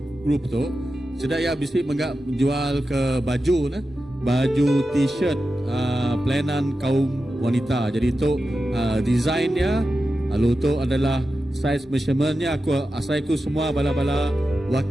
group tu sedaya bisi menggak jual ke baju baju t-shirt pelayanan kaum wanita. Jadi itu desainnya lalu itu adalah size measurementnya aku semua bala-bala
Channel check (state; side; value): normal; both; correlation 0.91